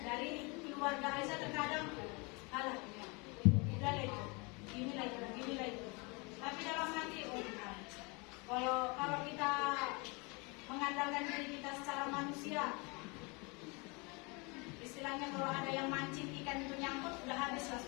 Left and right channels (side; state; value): right; quieter; 29.2 dB